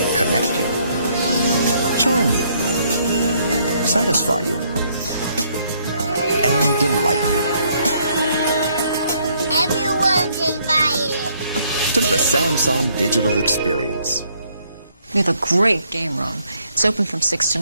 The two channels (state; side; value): inverted; both; correlation -0.68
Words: connect you, charm you, satisfy you, and delight you. Everyone's invited To the Samsung Digital Experience. We have a great game room. It's open from 6 to